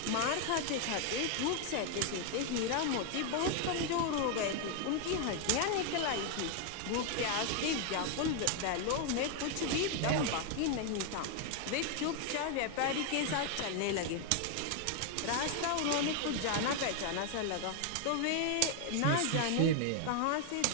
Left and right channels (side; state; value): both; different; correlation 0.00